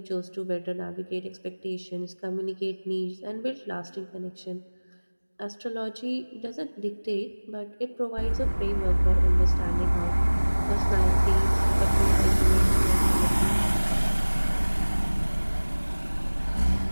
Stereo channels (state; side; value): inverted; both; correlation -1.00